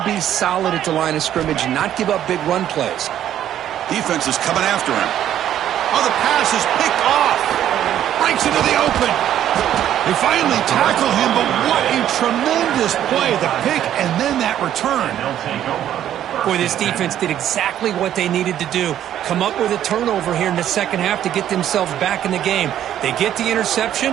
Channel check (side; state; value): left; quieter; 11.1 dB